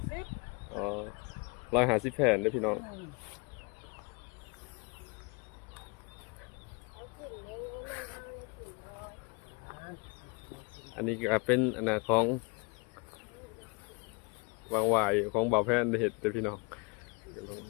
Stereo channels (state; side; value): quieter; right; 30.9 dB